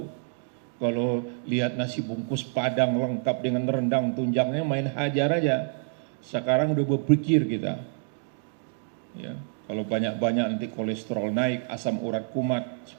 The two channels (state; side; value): silent; left; 60 dB below the other